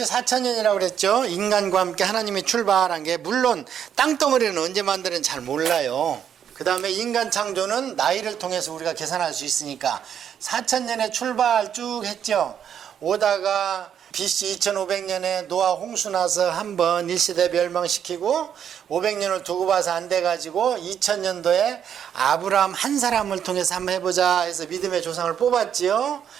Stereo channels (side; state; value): left; quieter; 8.8 dB